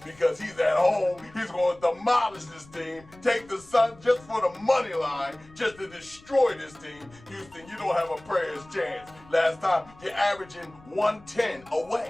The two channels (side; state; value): left; noise; rumble, 24 dB below the sound